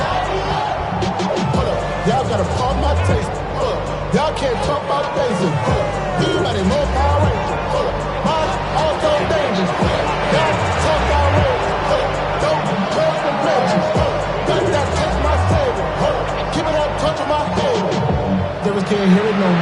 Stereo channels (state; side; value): identical; both; correlation 1.00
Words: Y'all gotta pump my taste. Y'all can't talk about basic. Anybody more Power Ranger? Mine also dangerous. Y'all talk about race. Don't trust the benches. Got that touch my savior. Keep it up, touch my head. Devils can't hear it no